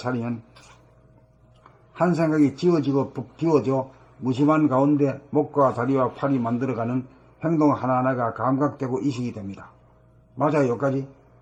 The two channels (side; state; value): both; identical; correlation 1.00